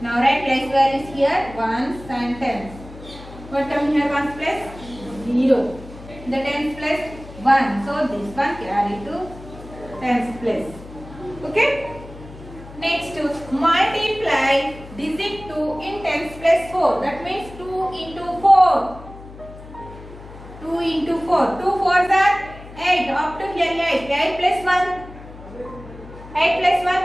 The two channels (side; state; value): left; noise; hum, 17 dB below the sound